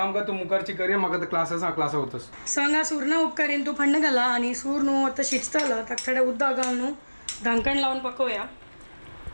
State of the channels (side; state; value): both; inverted; correlation -1.00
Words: कर तू मुखारची करे मग क्लासेस क्लास होतस सांगा सूर्ण उपकारीन तू फंड घाला आणि सूर न्हू आता शिजतलं तर थोडे उद्दा घालून न्हू ढांकण लावून पकवूया